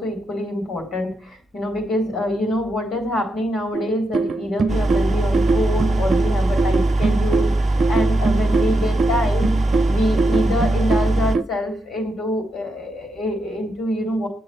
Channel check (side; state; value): both; normal; correlation 0.85